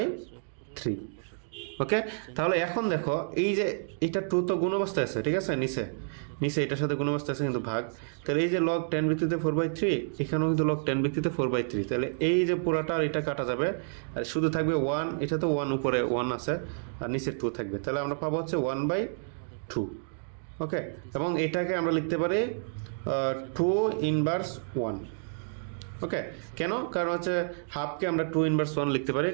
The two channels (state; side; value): silent; left; digital silence